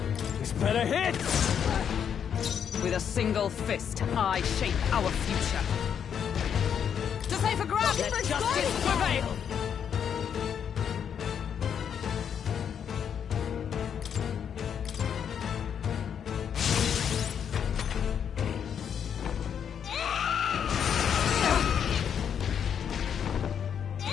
This better hit! With a single fist, I shape our future. To safer ground! Let for justice guarding prevail!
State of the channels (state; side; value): quieter; right; 8.1 dB